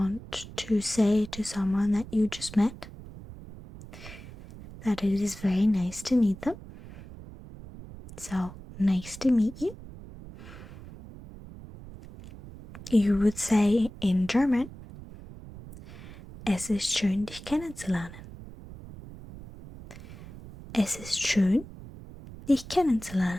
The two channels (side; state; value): right; noise; rumble, 16 dB below the sound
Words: to say to someone that you just met that it is very nice to meet them. So, nice to meet you. You would say in German, es ist schön, dich kennenzulernen. Es ist schön, dich